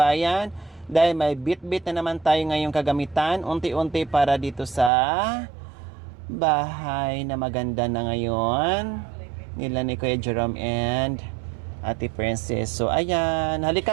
Dahil may bit-bit na naman tayo ngayong kagamitan, unti-unti para dito sa bahay na maganda na ngayon. Nila ni Kuya Jerome and Ate Princess. So, ayan.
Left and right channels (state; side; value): drops out; left; at 4.9 s